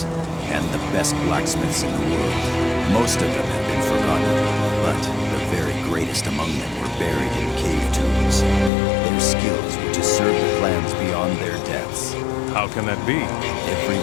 and the best blacksmiths in the world. Most of them have been forgotten, but the very greatest among them were buried in cave tombs. Their skills were to serve the clans beyond their deaths. How can that be? Every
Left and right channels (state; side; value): drops out; right; at 8.7 s